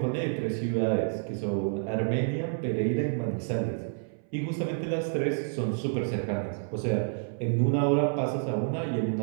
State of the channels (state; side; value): silent; left; 59 dB below the other